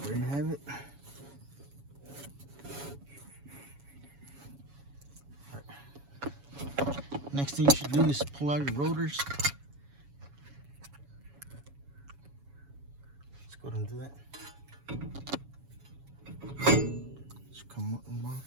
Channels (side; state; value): left; late; 7.1 ms